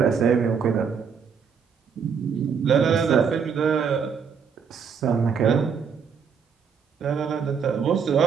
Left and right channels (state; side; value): quieter; left; 6.5 dB